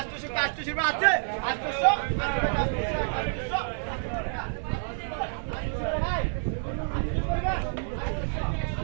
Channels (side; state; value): left; silent; 57 dB below the other